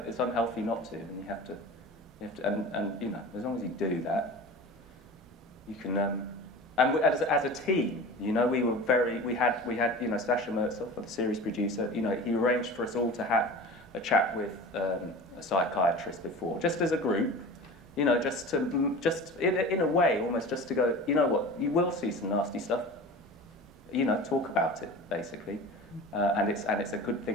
It's unhealthy not to, and you have to, and you know, as long as you do that, you can. And as a team, you know, we had, you know, Sasha Mertzov, the series producer, you know, he arranged for us all to have a chat with a psychiatrist before, just as a group, you know, just in a way, almost just to go, you know what, you will see some nasty stuff, you know, talk about it, basically, and it's a good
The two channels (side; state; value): both; normal; correlation 0.35